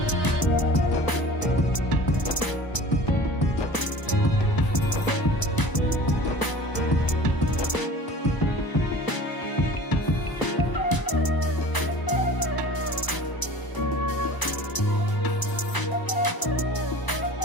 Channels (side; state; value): right; late; 1.0 ms